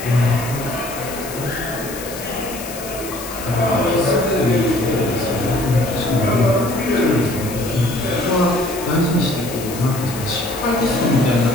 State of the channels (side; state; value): left; noise; hiss, 12 dB below the sound